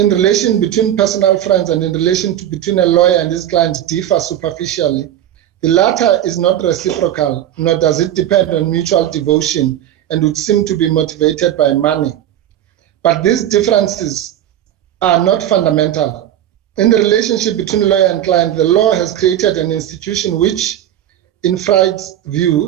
relation between personal friends and in relation between a lawyer and his client differ superficially. The latter is not reciprocal, nor does it depend on mutual devotion and would seem to be motivated by money. But these differences are not fundamental. In the relationship between lawyer and client, the law has created an institution which, in Freud's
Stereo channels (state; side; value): quieter; left; 11.5 dB